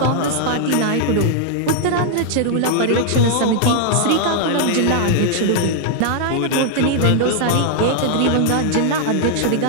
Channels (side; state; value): both; different; correlation 0.00